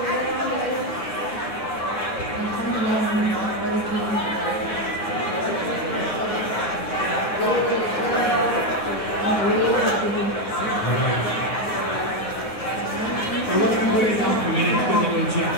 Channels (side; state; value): right; late; 9.6 ms